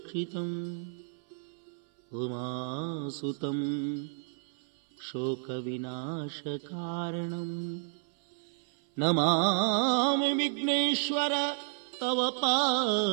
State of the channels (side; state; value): left; silent; 57 dB below the other